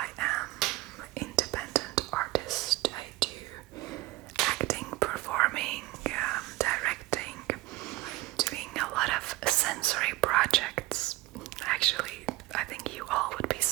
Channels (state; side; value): quieter; left; 18.9 dB